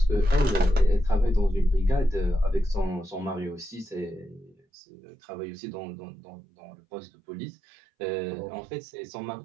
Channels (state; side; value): drops out; left; at 4.5 s